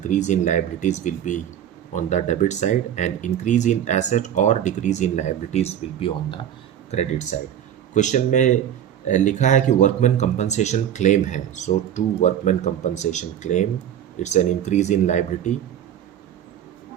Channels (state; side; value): quieter; left; 10.0 dB